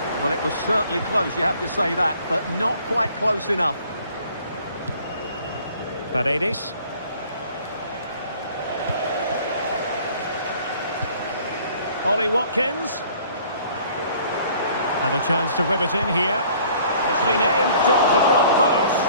Well, it was certainly close, you have to say that, but not quite close enough. Paredes. Ollie Watkins. And a chance to whip it in here. It's been aimed towards the front post.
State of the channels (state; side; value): inverted; both; correlation -0.55